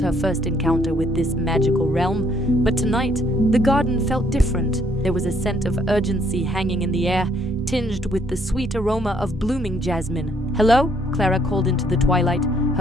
first encounter with this magical realm. But tonight, the garden felt different. There was a scent of urgency hanging in the air, tinged with the sweet aroma of blooming jasmine. "Hello?" Clara called into the twilight,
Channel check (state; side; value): normal; both; correlation 0.67